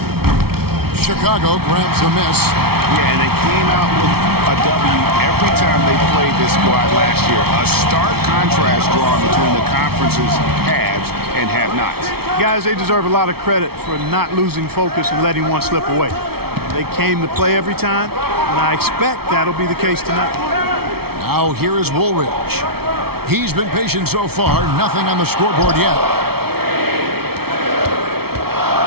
Chicago grabs a miss. Yeah, and they came out with a W every time they played this squad last year. A stark contrast drawn between the conference's haves and have-nots. Guys, they deserve a lot of credit for not losing focus and letting one slip away. They came to play every time, and I expect that'll be the case tonight. Now here is Woolridge. He's been patient so far. Nothing on the scoreboard yet.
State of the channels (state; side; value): late; left; 0.95 ms